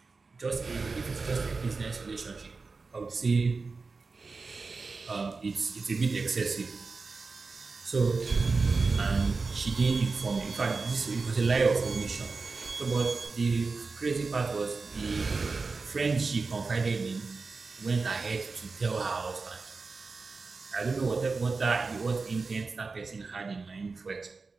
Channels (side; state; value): left; quieter; 4.2 dB